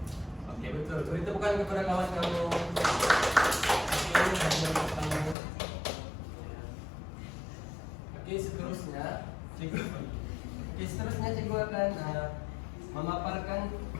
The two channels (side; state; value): right; drops out; at 5.4 s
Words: Oke, betul. Beri tepukan kepada kawan kamu. Oke, seterusnya cikgu akan memaparkan